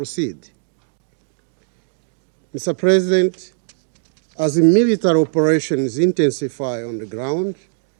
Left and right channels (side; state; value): left; silent; digital silence